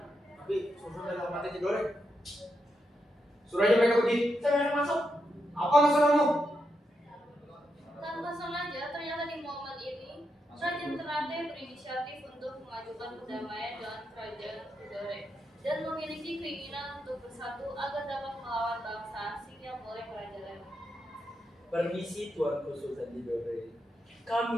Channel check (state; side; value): normal; both; correlation 0.84